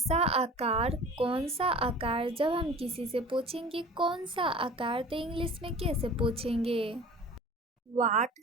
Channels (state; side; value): normal; both; correlation 0.42